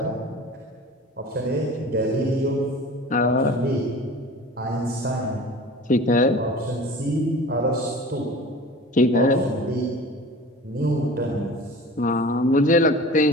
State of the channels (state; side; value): normal; both; correlation 0.40